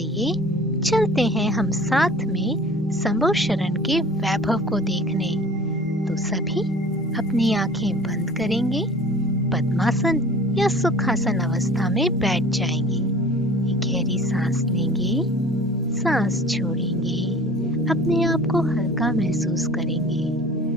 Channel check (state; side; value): normal; both; correlation 0.45